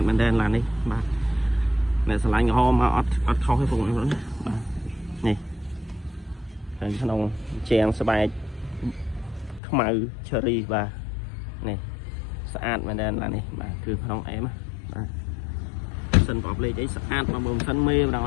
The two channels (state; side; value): drops out; right; at 9.6 s